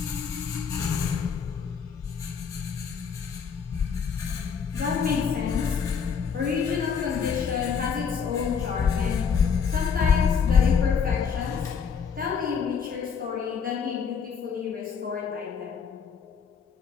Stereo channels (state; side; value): quieter; right; 6.5 dB